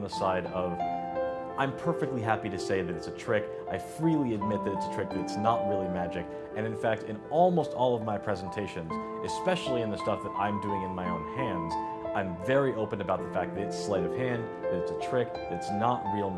side of, I'm perfectly happy to say that it's a trick. I freely admit that it's a trick, that it's not really magic. And in fact, in almost all of my presentations, especially in the stuff that I'm doing in my own hands, I'm very open about the fact that it's sleight of hand, that it's a trick, that it's not real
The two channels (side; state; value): both; identical; correlation 1.00